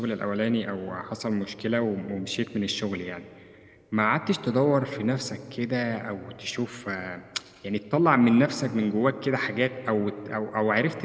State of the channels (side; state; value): both; identical; correlation 1.00